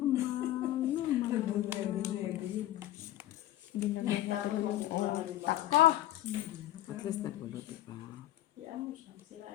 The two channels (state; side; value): quieter; right; 14.0 dB